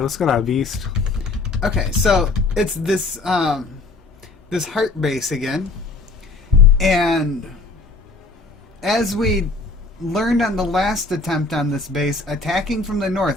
going on, Beast? Okay, so it's this this heart base again, and as we learned on the last attempt on this base, attacking from the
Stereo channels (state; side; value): quieter; right; 3.6 dB